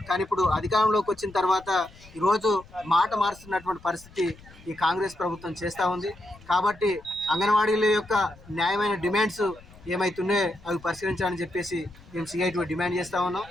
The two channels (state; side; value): noise; left; rumble, 23 dB below the sound